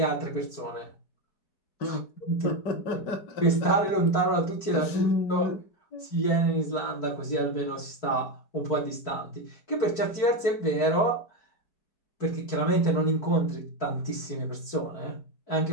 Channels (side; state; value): right; late; 4.5 ms